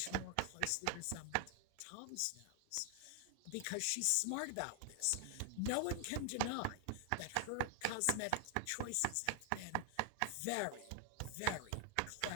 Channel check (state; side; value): different; both; correlation 0.00